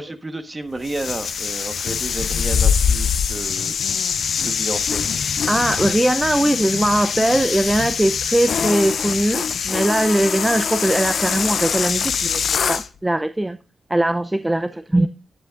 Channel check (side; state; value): both; normal; correlation 0.90